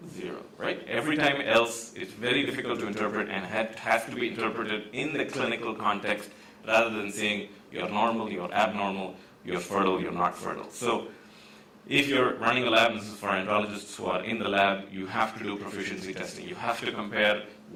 0, right? Every time else, it's very difficult to interpret and has to be interpreted in the clinical context rather than saying you're normal, you're abnormal, you're fertile, you're not fertile. So if you're running a lab, this is for andrologists who are in the lab, you have to do proficiency testing. You have to compare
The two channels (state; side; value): identical; both; correlation 1.00